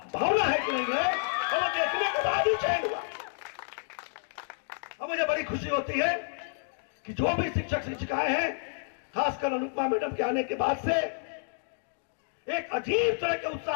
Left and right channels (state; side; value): silent; right; digital silence